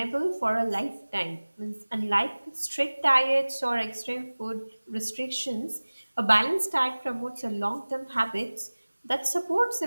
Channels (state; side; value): inverted; both; correlation -1.00